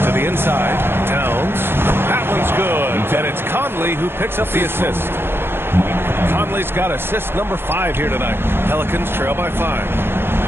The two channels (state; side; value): late; left; 0.11 ms